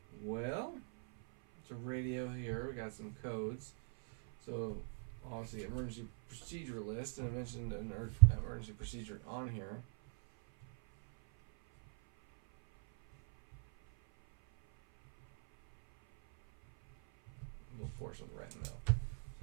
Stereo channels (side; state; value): left; silent; 50 dB below the other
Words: Well, it's a radio here. We got some codes. So, obviously, emergency procedure list, and I mentioned an emergency procedure on here. We'll force on the right in the middle.